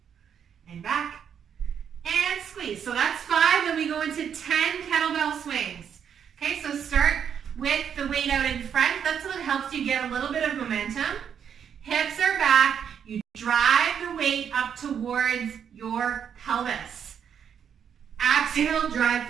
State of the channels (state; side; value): quieter; left; 8.0 dB